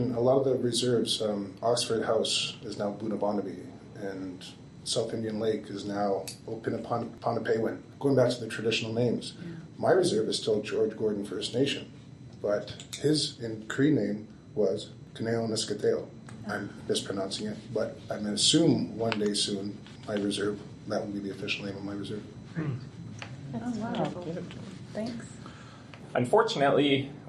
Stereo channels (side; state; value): both; identical; correlation 1.00